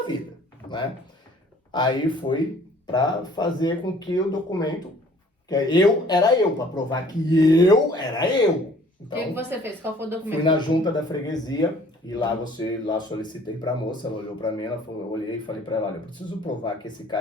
vida, né? Aí fui para fazer com que o documento, que era eu, para provar que eu era eu. O Então, que você fez? Qual foi o documento? fui na junta da freguesia e lá solicitei para a moça, ela olhou para mim, eu olhei e falei para ela, olha, eu preciso provar que esse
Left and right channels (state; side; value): normal; both; correlation 0.55